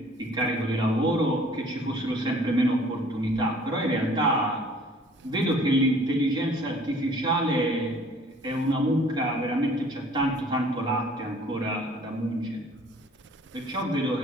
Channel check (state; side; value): normal; both; correlation 0.53